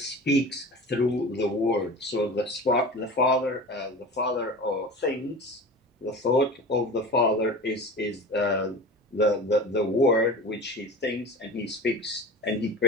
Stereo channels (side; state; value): both; normal; correlation 0.32